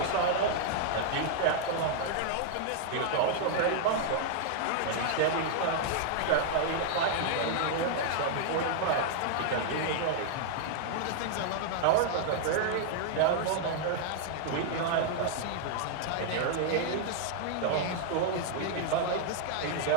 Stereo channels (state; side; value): different; both; correlation -0.01